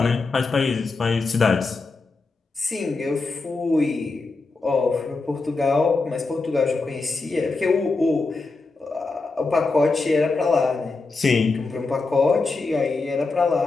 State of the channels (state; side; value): quieter; right; 3.8 dB